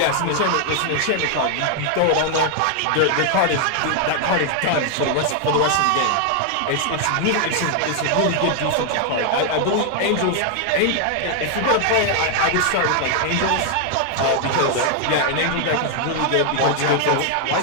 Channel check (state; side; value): different; both; correlation 0.00